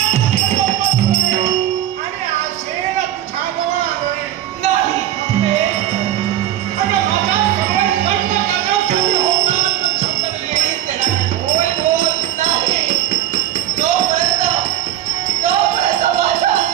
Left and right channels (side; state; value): left; quieter; 12.5 dB